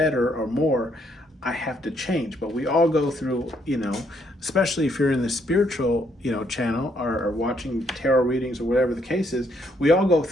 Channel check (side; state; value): both; normal; correlation 0.72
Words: or more, I have to change. But we all go through, especially if you're in the spiritual, channel or watching tarot readings or whatever the case is, we all go